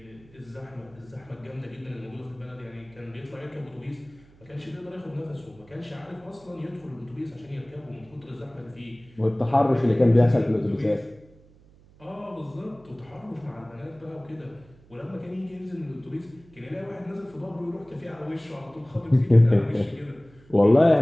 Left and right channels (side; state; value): right; noise; hum, 26 dB below the sound